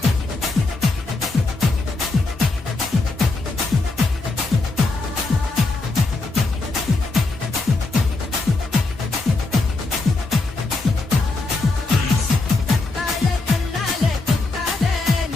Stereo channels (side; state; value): right; quieter; 3.4 dB